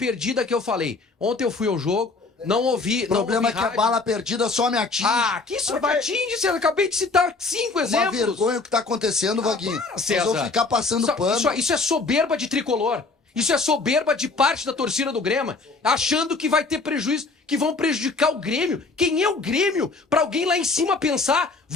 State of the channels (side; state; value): right; quieter; 3.8 dB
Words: que eu falei. Ontem eu fui ao jogo, não ouvi. O problema é que a rádio. bala perdida só me atinge. Ah, que isso me atinge, César. Acabei de citar 5 Uma exemplos. vergonha o que tá acontecendo, Vaguinho. para, Nós César. vamos ficar passando pano. Isso é soberba de tricolor. Isso é soberba de parte da torcida do Grêmio, achando que vai ter prejuízo, que vão prejudicar o Grêmio. Quem é o Grêmio? Pra alguém lá em cima pensar,